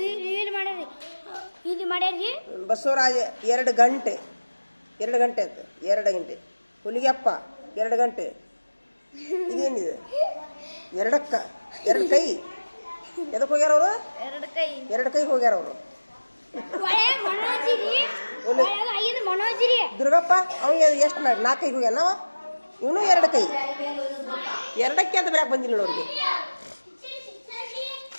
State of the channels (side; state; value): both; inverted; correlation -1.00